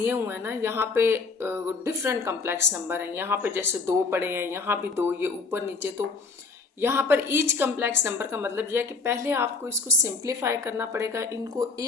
हुए हैं ना, यहाँ पे डिफरेंट कम्प्लेक्स नंबर हैं। यहाँ पे जैसे 2 पड़े हैं, यहाँ भी 2, ये ऊपर नीचे। तो यहाँ पर ईच कम्प्लेक्स नंबर का मतलब यह है कि पहले आपको इसको सिंप्लीफाई करना पड़ेगा, इनको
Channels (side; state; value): right; quieter; 4.1 dB